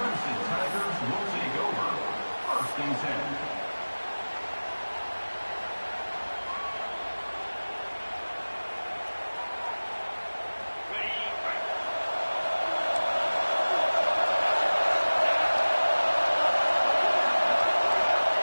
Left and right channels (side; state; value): both; inverted; correlation -1.00